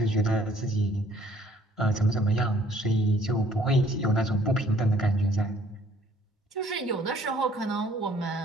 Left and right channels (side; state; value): both; normal; correlation 0.59